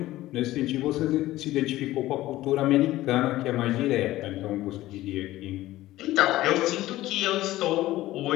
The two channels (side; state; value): right; quieter; 16.1 dB